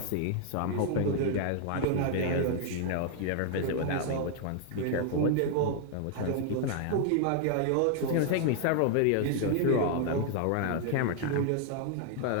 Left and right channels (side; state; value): both; different; correlation 0.00